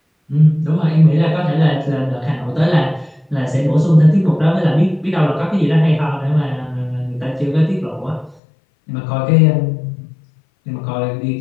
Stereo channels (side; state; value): right; drops out; at 8.4 s